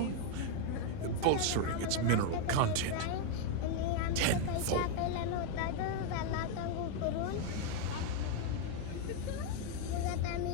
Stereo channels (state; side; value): different; both; correlation 0.01